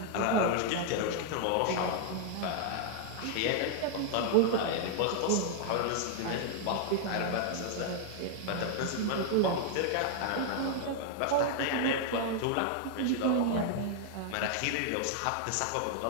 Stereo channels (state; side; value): different; both; correlation 0.00